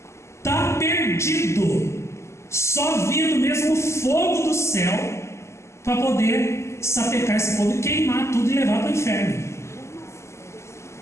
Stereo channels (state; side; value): late; right; 0.13 ms